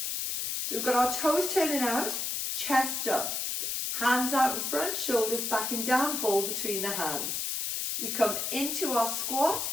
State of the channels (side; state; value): left; noise; hiss, 1 dB below the sound